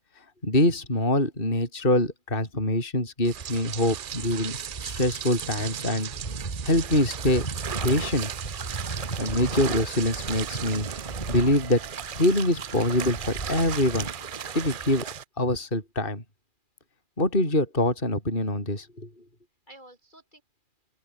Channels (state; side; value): late; right; 2.4 ms